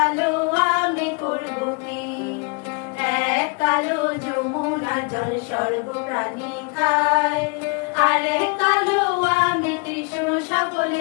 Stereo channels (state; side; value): quieter; right; 32.9 dB